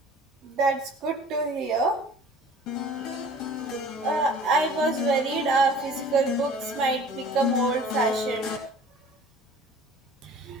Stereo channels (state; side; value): normal; both; correlation 0.47